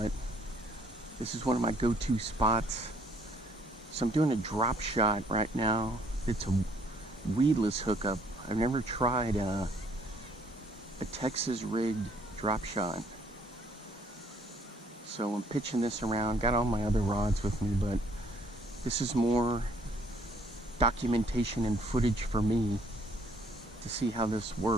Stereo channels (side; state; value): both; normal; correlation 0.64